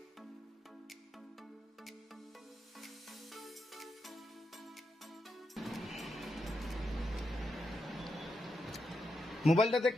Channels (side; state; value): both; normal; correlation 0.84